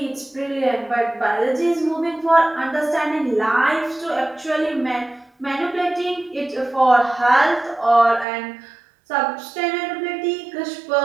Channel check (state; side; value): drops out; left; at 8.2 s